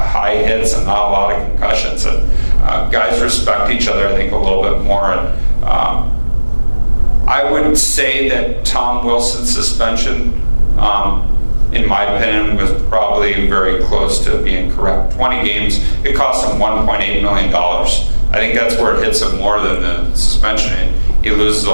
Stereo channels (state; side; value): inverted; both; correlation -1.00